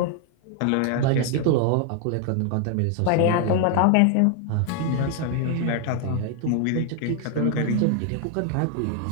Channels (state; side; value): different; both; correlation 0.00